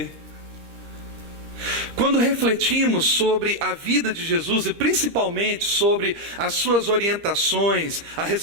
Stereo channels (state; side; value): late; left; 13 ms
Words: Quando refletimos sobre a vida de Jesus e principalmente sobre as suas orientações a